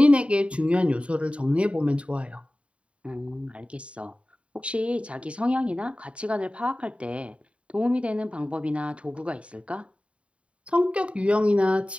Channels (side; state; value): left; late; 0.062 ms